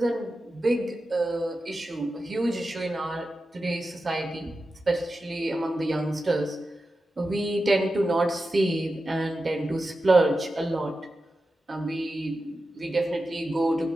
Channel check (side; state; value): both; normal; correlation 0.92